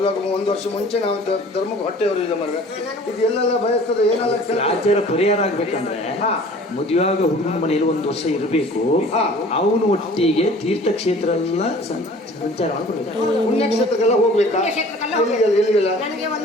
1 ವರ್ಷ ಮುಂಚೆ ನಾವು ಧರ್ಮಕ್ಕೆ ಹೊಟ್ಟೆಯವರು ಇದೆ ಮರ ಇದು ಎಲ್ಲೆಲ್ಲ ಬಯಸ್ತದೆ ಏನೆಲ್ಲ ಆಚಾರ ಪರಿಹಾರ ಆಗ್ಬೇಕಂದ್ರೆ ಹಾ. ಮದುವೆಯಾಗ ಹುಡುಗನ ಮನೆಯಲ್ಲಿ 1 ವರ್ಷ ಇರಬೇಕು. ಹಾ. ಅವನು ಒಟ್ಟಿಗೆ ತೀರ್ಥಕ್ಷೇತ್ರ ಎಲ್ಲ ಸಂಚಾರ ಮಾಡ್ಬೇಕು. ಪುಣ್ಯಕ್ಷೇತ್ರಕ್ಕೆಲ್ಲ ಹೋಗ್ಬೇಕಾ? ಪುಣ್ಯಕ್ಷೇತ್ರಕ್ಕೆಲ್ಲ ಎಲ್ಲಿಗೆಲ್ಲ ನನಗೆ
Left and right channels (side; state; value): both; normal; correlation 0.48